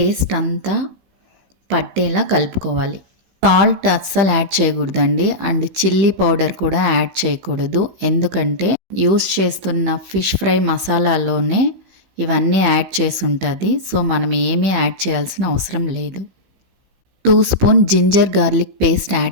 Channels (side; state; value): left; late; 16 ms